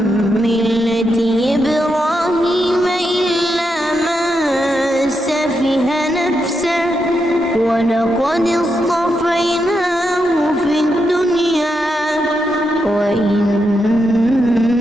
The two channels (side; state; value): both; normal; correlation 0.84